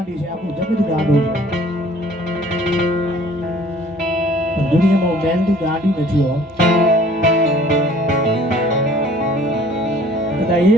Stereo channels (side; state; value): both; normal; correlation 0.53